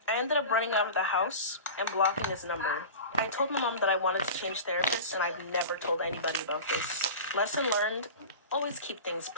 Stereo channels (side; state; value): both; inverted; correlation -0.32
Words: I ended up running out of the house and blocking his number. I told my mom that I wanted to change therapists, and I've never told anybody about this. Lesson learned, always keep things